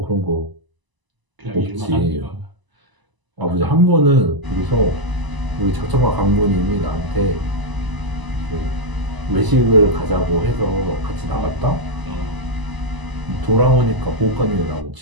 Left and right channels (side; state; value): left; late; 1.0 ms